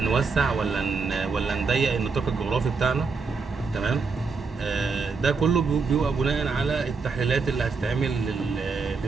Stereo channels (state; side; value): quieter; left; 4.7 dB